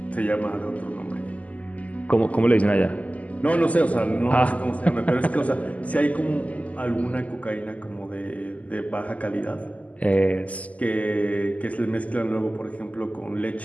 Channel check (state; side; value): late; right; 0.072 ms